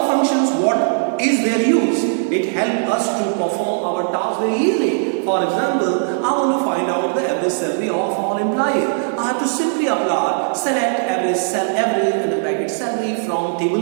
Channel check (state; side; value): silent; left; 59 dB below the other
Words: functions, what is their use? It helps us to perform our task very easily. For example, I want to find out the average salary of all employees. I have to simply apply select average in the bracket salary from